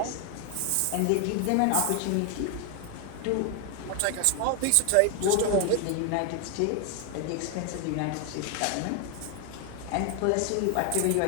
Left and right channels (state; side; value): different; both; correlation 0.01